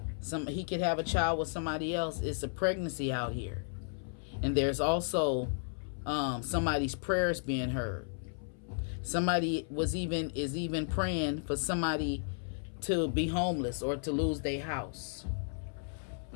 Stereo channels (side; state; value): right; silent; 55 dB below the other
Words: he could have a child with somebody else. It's a pregnancy out here. And there's also somebody's prayers being heard. Somebody is even praying for somebody to be homeless or to lose their house.